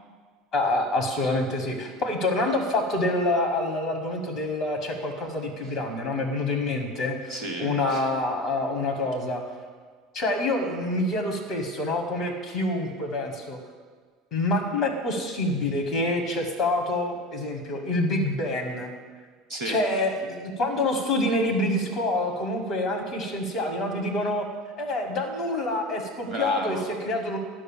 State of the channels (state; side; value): normal; both; correlation 0.30